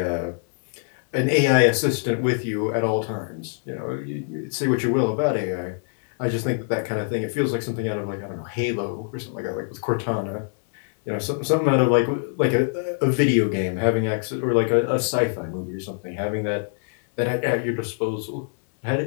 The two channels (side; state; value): right; silent; 62 dB below the other